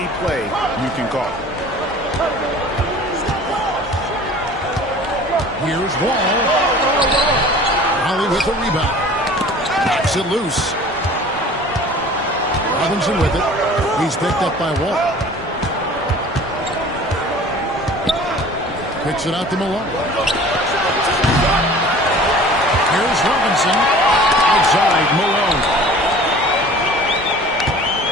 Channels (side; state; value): both; normal; correlation 0.45